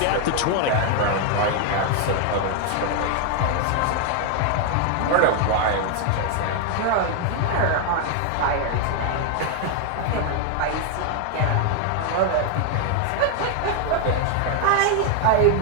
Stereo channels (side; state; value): both; different; correlation 0.00